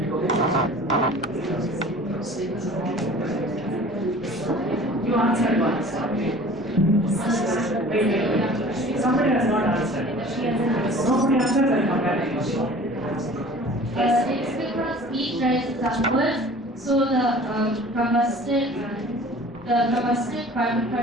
You answered once. Wait. Somebody has not answered. Nobody answers, I come back to you. It's because heat rises upwards, so the combusted carbon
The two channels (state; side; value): normal; both; correlation 0.45